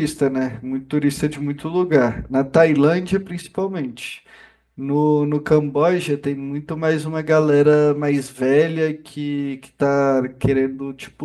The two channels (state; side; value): identical; both; correlation 1.00